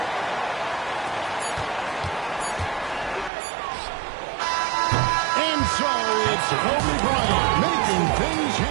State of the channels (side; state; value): left; drops out; at 3.3 s